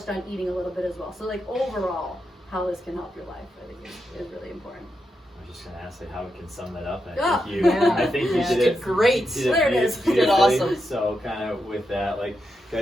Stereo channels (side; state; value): both; normal; correlation 0.85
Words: on eating a little bit as well. So overall, how this can help your life, I think is really important. I was just going to ask how we can sum that up. And I think you did it great. There it is. You did awesome. So kind of with that,